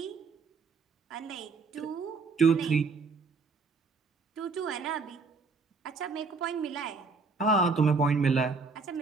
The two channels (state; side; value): quieter; left; 4.4 dB